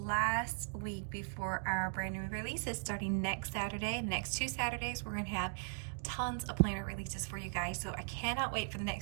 week before our brand new releases starting next Saturday. The next 2 Saturdays we're going to have tons of planner releases for you guys, so I cannot wait for the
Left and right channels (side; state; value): left; silent; digital silence